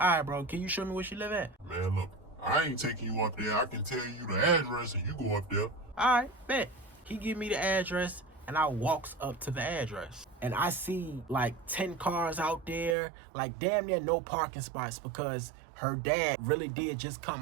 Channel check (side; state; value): left; drops out; at 13.0 s